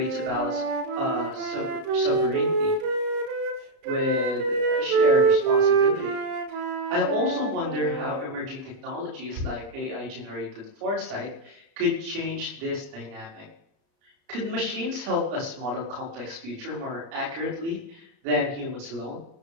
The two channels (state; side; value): late; left; 33 ms